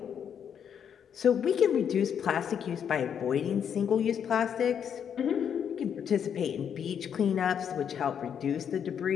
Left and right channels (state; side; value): quieter; right; 8.1 dB